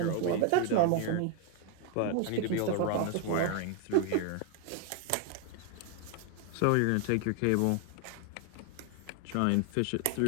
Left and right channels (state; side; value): different; both; correlation 0.01